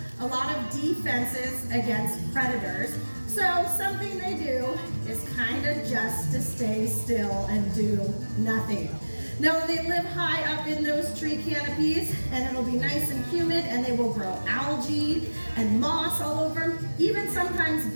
a lot of defenses against predators, so something they do is kind of just to stay still and do nothing. Now they live high up in those tree canopies, and it'll be nice and humid, and they will grow algae and moss all over them. Even sometimes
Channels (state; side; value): inverted; both; correlation -1.00